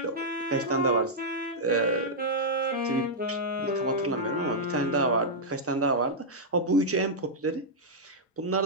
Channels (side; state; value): both; normal; correlation -0.08